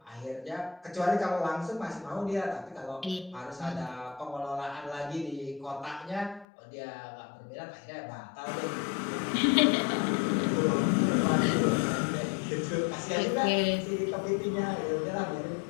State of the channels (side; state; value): right; drops out; at 6.5 s